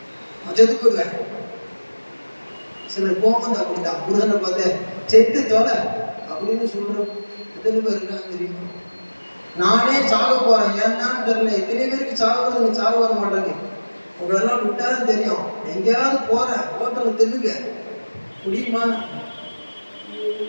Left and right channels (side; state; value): both; inverted; correlation -1.00